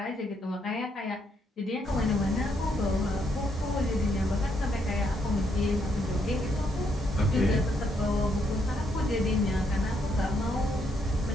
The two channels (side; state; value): both; normal; correlation 0.75